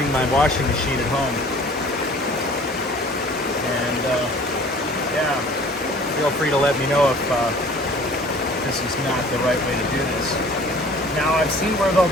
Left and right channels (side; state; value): both; normal; correlation 0.49